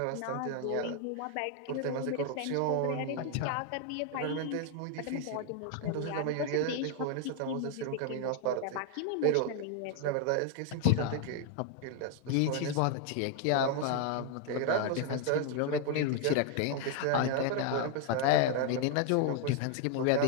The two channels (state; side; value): different; both; correlation 0.00